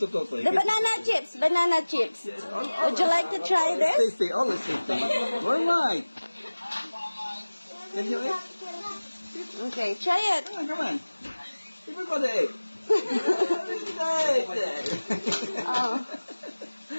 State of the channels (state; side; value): inverted; both; correlation -1.00